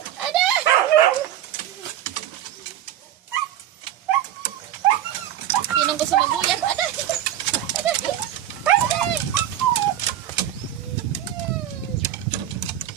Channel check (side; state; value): left; quieter; 11.7 dB